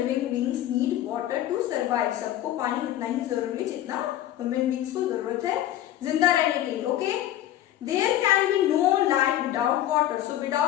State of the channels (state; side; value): quieter; right; 12.9 dB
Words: beings need water to survive. सबको पानी उतना ही जरूरी है जितना ह्यूमन बींग्स को जरूरत है जिंदा रहने के लिए. Okay, there can be no life without water. So